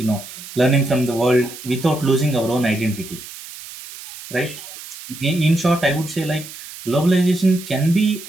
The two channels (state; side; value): noise; right; hiss, 14 dB below the sound